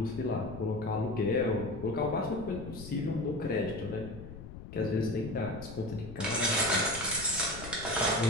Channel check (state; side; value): noise; left; rumble, 12 dB below the sound